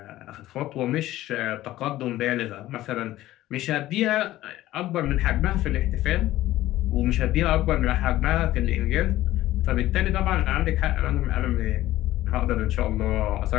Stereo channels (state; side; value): quieter; right; 15.2 dB